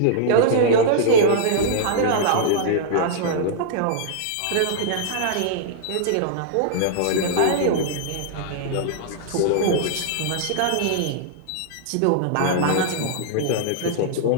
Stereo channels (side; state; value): both; different; correlation -0.02